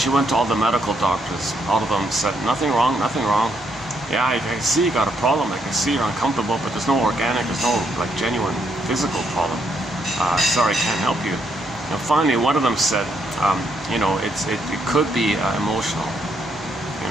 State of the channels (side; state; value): both; normal; correlation 0.75